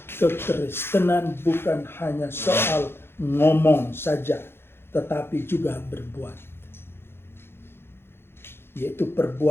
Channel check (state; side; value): late; right; 0.11 ms